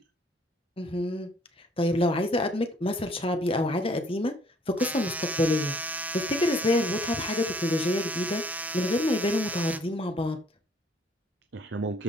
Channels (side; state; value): both; normal; correlation 0.60